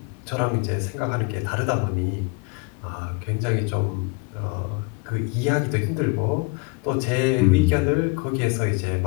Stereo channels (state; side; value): quieter; right; 28.5 dB